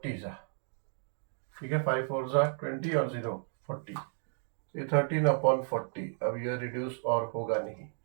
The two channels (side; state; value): left; silent; 56 dB below the other